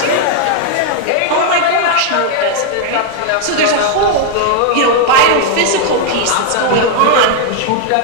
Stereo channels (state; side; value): different; both; correlation 0.00